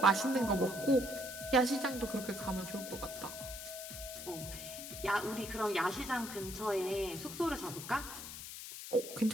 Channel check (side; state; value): left; noise; hiss, 9 dB below the sound